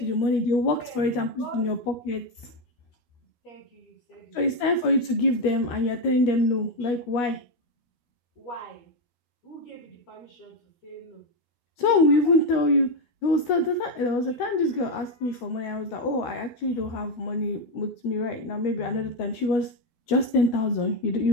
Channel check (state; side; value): late; right; 13 ms